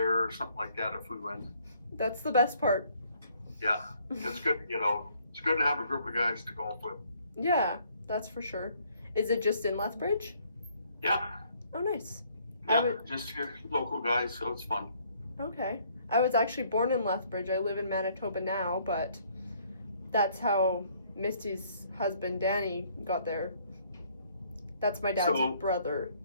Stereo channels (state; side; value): inverted; both; correlation -0.64